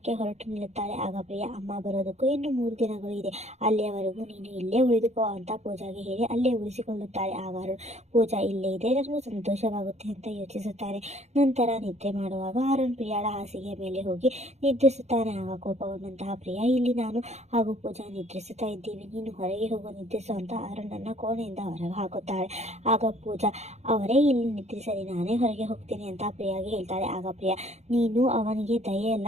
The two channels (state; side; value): late; left; 0.32 ms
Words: ಹೊರಟು ನಿಲ್ಲುತ್ತಾಳೆ. ಆಗ ಪ್ರಿಯಾ, ಅಮ್ಮ ಬರೋದಕ್ಕೂ ಇನ್ನು 3 ದಿನಗಳು ಇದೆ, ಅಲ್ಲಿಯವರೆಗೂ ನೀನು ಇಲ್ಲೇ ಉಳಿದುಕೋ ಅಂತ ಪೂಜಾಗೆ ಹೇಳಿ ಅಲ್ಲೇ ಉಳಿಸಿಕೊಳ್ಳುತ್ತಾಳೆ. ಆಗ ಅರುಣ್, ಪೂಜಾ ಇಲ್ಲೇ ಇದ್ರೆ ನನಗೂ ಸಂತೋಷವಾಗುತ್ತೆ ಅಂತ ಯೋಚಿಸುತ್ತಾನೆ. ನಂತರ ನಿದ್ರೆ ಮಾಡುವಾಗ ಅರುಣ್ ಪ್ರಿಯಾಳ ಹಾಸಿಗೆಯ ಮೇಲೆ ಹೋಗಿ ನಿದ್ರಿಸುತ್ತಾನೆ. ಆಗ ಕೋಪಗೊಂಡಂತಹ ಪ್ರಿಯಾ, ಇಲ್ಲಿ ನಾನು ಹಾಗೂ ಪೂಜಾ ನಿದ್ರಿಸುತ್ತಾ ಇದ್ದೀವಿ, ನೀನು ಹೊರಗೆ ಹೋಗೋ ನಿದ್ರಿಸು ಅಂತ ಅರುಣನ್ನ ಕೋಣೆಯಿಂದ ಹೊರಗೆ ಹಾಕುತ್ತಾಳೆ. ಆಗ ಪೂಜಾ, ಅವರೇ ಇಲ್ಲಿ ನಿದ್ರಿಸಲಿ, ನಾನೇ ಹೊರಗೆ ಹೋಗ್ತೀನಿ ಅಂತ ಪ್ರಿಯಾಗೆ ಹೇಳ್ತಾಳೆ. ಆಗ ಪ್ರಿಯಾ, ನೀನು ಅವನಿಗೆ ದಯೆ